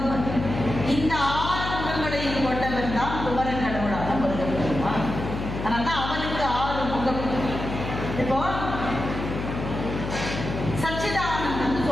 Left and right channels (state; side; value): noise; left; hum, 6 dB below the sound